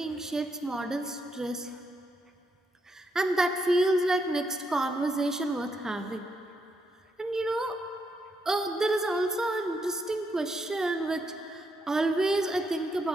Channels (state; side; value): normal; both; correlation 0.79